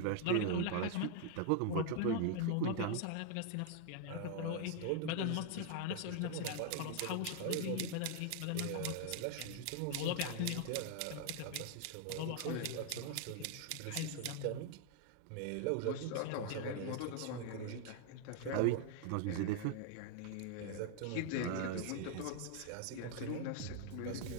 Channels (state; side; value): different; both; correlation 0.00